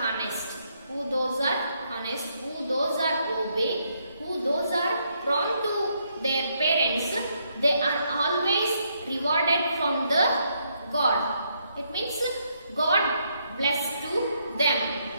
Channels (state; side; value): inverted; both; correlation -0.75